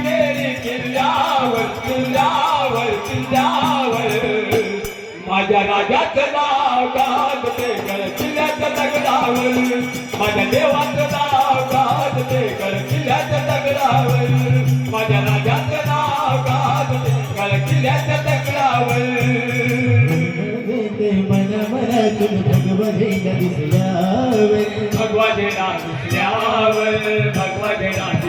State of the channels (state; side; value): identical; both; correlation 1.00